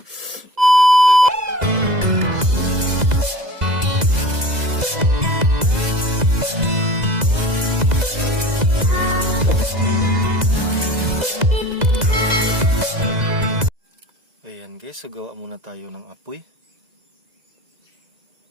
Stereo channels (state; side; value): late; left; 2.0 ms